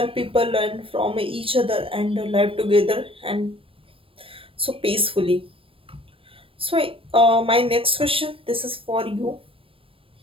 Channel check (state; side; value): late; left; 0.26 ms